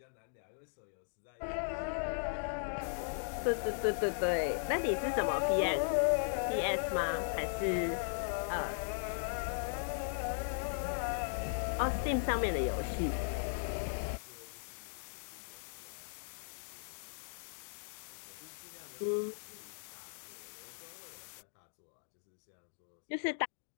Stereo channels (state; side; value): silent; right; digital silence